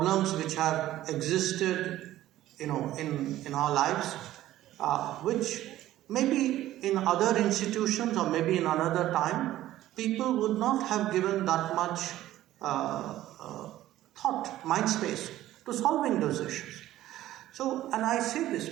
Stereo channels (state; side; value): quieter; left; 14.3 dB